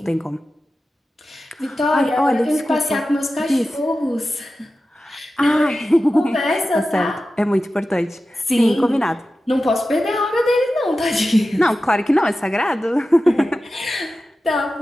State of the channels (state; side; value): normal; both; correlation 0.93